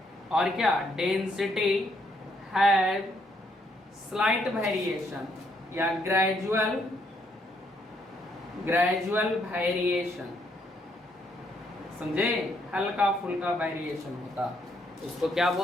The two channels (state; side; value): normal; both; correlation 0.72